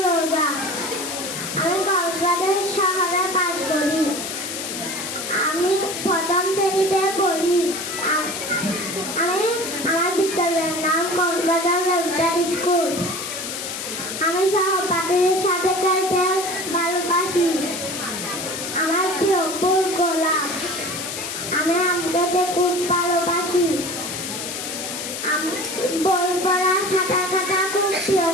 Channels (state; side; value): noise; left; hiss, 6 dB below the sound